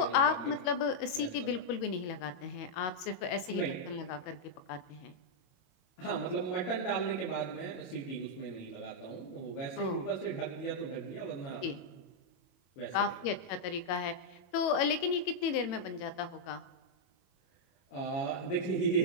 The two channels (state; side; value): late; right; 22 ms